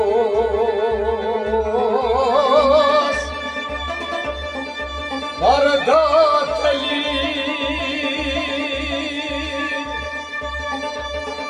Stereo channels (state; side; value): identical; both; correlation 1.00